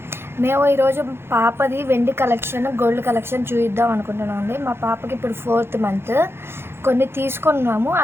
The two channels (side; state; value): left; late; 0.11 ms